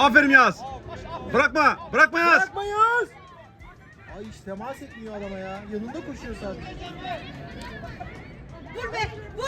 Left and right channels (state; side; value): identical; both; correlation 1.00